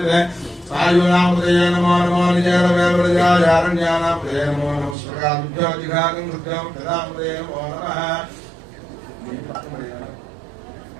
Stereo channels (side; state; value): left; drops out; at 5.0 s